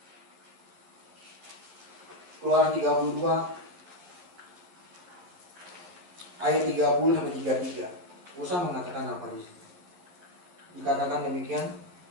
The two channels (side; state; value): left; late; 11 ms